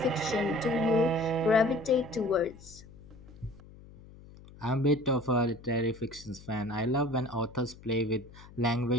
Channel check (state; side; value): noise; left; hum, 20 dB below the sound